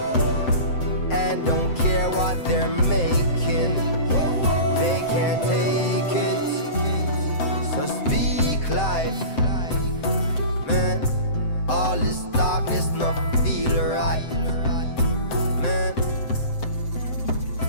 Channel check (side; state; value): right; late; 7.8 ms